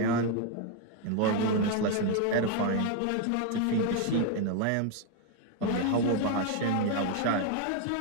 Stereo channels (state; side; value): different; both; correlation 0.01